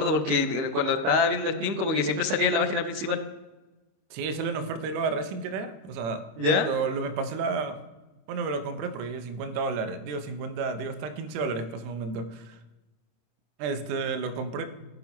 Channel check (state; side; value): late; left; 25 ms